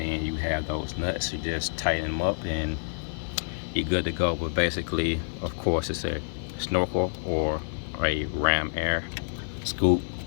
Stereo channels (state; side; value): silent; right; digital silence